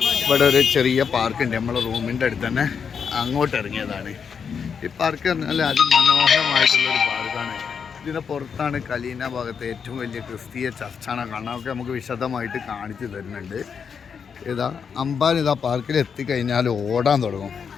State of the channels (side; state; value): right; quieter; 6.6 dB